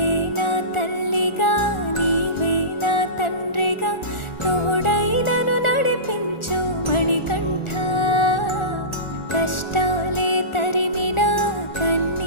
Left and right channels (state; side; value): late; right; 1.4 ms